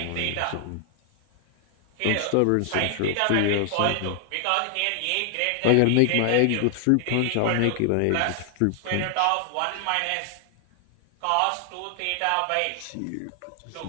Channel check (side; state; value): both; different; correlation 0.00